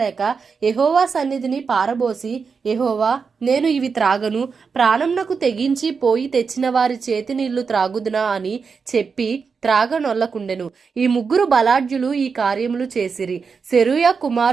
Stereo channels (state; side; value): quieter; left; 5.4 dB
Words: లేక యెహోవా సన్నిధిని పారబోసి, యెహోవా, నేను ఇవి త్రాగను, ప్రాణంనకు తెగించి పోయి తెచ్చిన వారి చేతి నీళ్లు త్రాగుదునా అని చెప్పి త్రాగనొల్లకుండెను. ఈ ముగ్గురు బలాఢ్యులు ఈ కార్యములు చేసిరి. సెరూయా